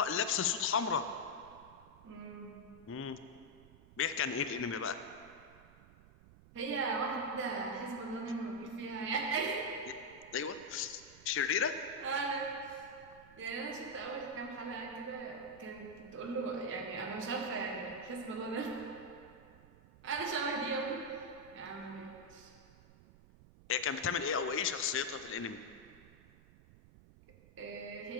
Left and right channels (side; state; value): right; noise; rumble, 21 dB below the sound